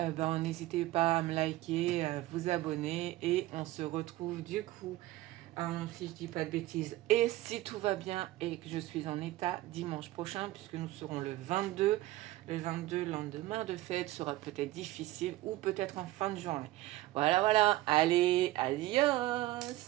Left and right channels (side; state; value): left; quieter; 17.0 dB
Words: n'hésitez pas à me liker, à vous abonner et on se retrouve du coup, si je dis pas de bêtises, et si tout va bien et que je suis en état, dimanche prochain, puisque nous serons le 22. Le 22, lendemain de fête, sera peut-être difficile ou peut-être en fin de journée. Voilà, voilà. Allez,